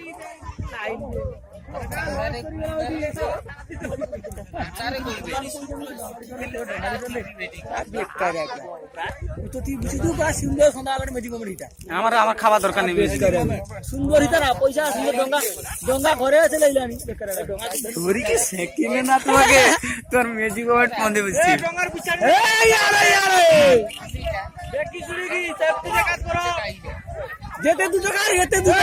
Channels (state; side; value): identical; both; correlation 1.00